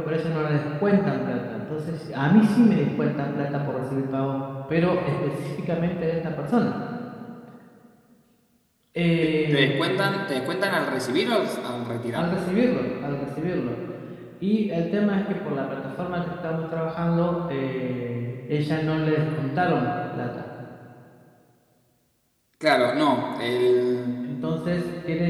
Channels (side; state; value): both; identical; correlation 1.00